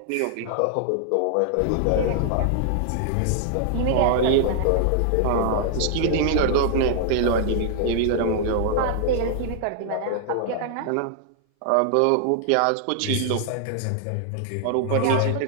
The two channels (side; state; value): both; different; correlation -0.01